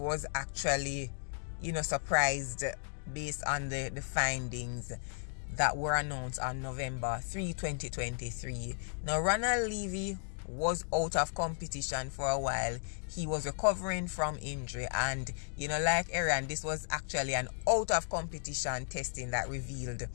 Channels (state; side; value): silent; right; digital silence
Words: actually, you know, surprised based on the findings that were announced on November 3, 2023. Now, Ronald Levy was out of competition for a while. He was recovering from injury, and, you know, like Erriyon, this was actually an out of competition testing that revealed